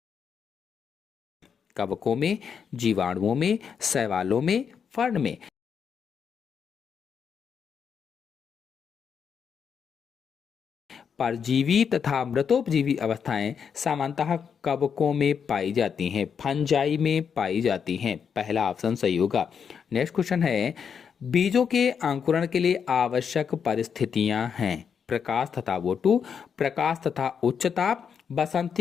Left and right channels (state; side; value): quieter; right; 7.0 dB